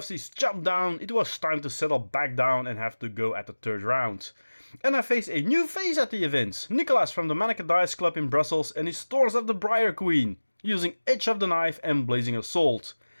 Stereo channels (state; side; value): inverted; both; correlation -1.00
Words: is chopped down, it was time to settle back down and have to go at the 3rd round. And I faced a new face at the event, Nicolas from the Manneke Dice Club in Brussels and his Tours of the Briar Queen, using Edge of the Knife and Blazing Assault.